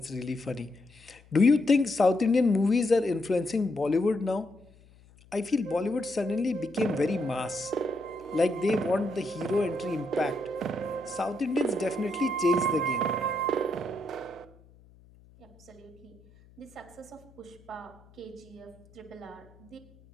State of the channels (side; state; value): left; noise; hum, 26 dB below the sound